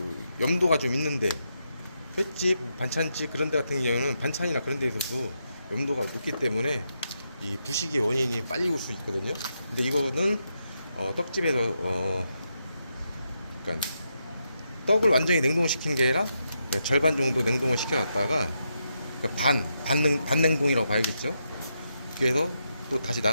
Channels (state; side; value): inverted; both; correlation -0.83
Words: 염도가 좀 있는데, 횟집, 반찬집 그런 데 같은 경우는 반찬이나 그런 데에서도 염도가 높기 때문에 이 부식의 원인이 빨리 올 수 있거든요. 근데 이거는 떡집에서 그러니까 떡을 완전히 냉동시킨 게 아니라 절반 정도 냉동을 시켜놨다가, 그러니까 반냉동이라고 봐야겠죠. 그래서 또 다시